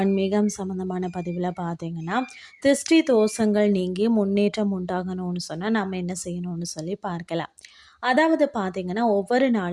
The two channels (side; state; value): both; identical; correlation 1.00